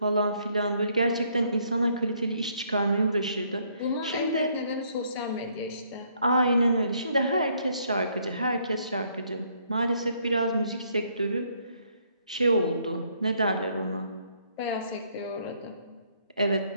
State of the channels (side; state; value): both; inverted; correlation -0.68